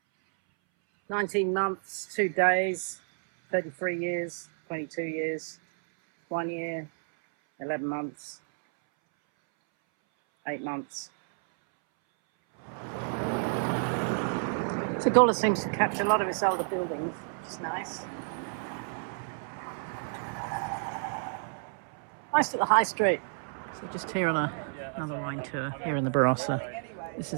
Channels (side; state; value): left; silent; 58 dB below the other